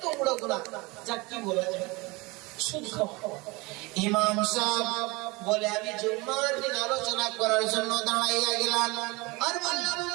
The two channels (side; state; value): left; quieter; 24.7 dB